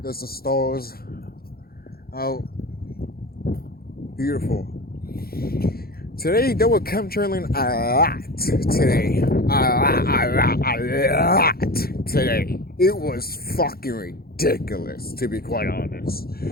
There's the stars out. Beautiful. Today they were chemtrailing a lot today. A lot today. It was fucking ridiculous, to be quite honest.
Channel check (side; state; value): right; late; 0.44 ms